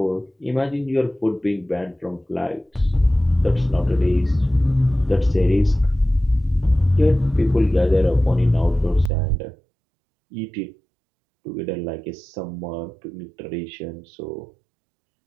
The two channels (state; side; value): drops out; left; at 9.1 s